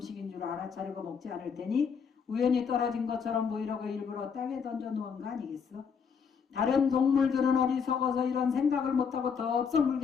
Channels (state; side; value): quieter; right; 6.4 dB